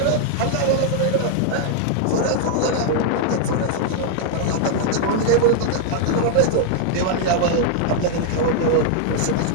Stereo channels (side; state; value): both; different; correlation 0.00